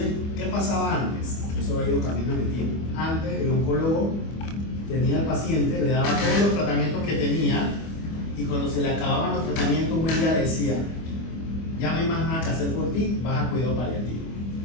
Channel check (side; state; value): right; late; 25 ms